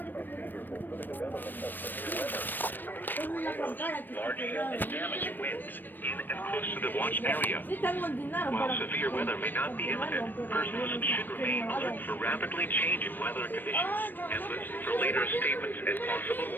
are favorable for the development of severe weather. Large hail and damage winds in and close to the watch area. While severe weather may not be imminent, persons should remain alert for rapidly changing weather conditions and listen for later statements and possible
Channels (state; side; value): late; right; 0.092 ms